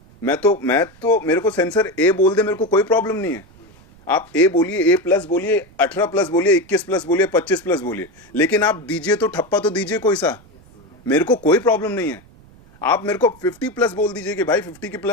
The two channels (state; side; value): noise; right; rumble, 26 dB below the sound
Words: मैं तो मेरे को सेंसर ए बोल दे, मेरे को कोई प्रॉब्लम नहीं है। आप ए बोलिए, ए प्लस बोलिए, 18 प्लस बोलिए, 21 प्लस बोलिए, 25 प्लस बोलिए, लेकिन आप दीजिए तो ठप्पा तो दीजिए कोई सा, मेरे को कोई प्रॉब्लम नहीं है। आप मेरे को 50 प्लस बोल दीजिए कि भाई 50 के